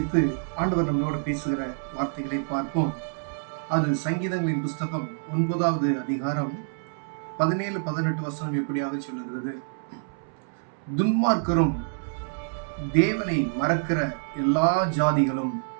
ஆண்டவர் நம்மளோடு பேசுகிற வார்த்தைகளை பார்ப்போம். அது சங்கீதங்களின் புஸ்தகம் 9வது அதிகாரம் 17, 18 வசனம் எப்படியாக சொல்லுகிறது. துன்மார்க்கரும் தேவனை மறக்கிற எல்லா ஜாதிகளும்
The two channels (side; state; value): left; silent; 60 dB below the other